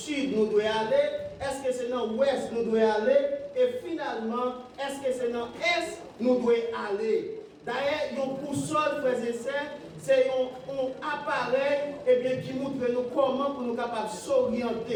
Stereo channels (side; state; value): both; identical; correlation 1.00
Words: nous devons aller, est-ce que c'est dans l'ouest nous devons aller, et finalement, est-ce que c'est dans l'est nous devons aller. D'ailleurs, une boussole, frères et sœurs, c'est un appareil qui montre nous comment pour nous capables de